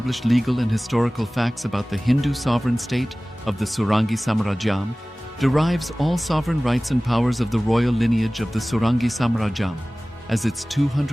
legal and historical facts about the Hindu sovereign state of the Surangi Samrajyam, derives all sovereign rights and powers of the royal lineage of the Surangi Samrajyam as its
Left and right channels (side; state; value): both; normal; correlation 0.98